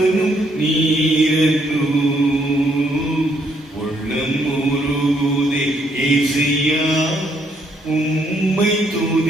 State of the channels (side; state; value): both; normal; correlation 0.71